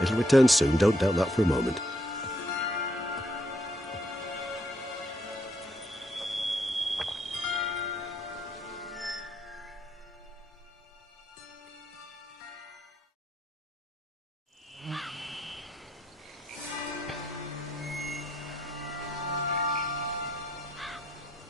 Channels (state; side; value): normal; both; correlation 0.73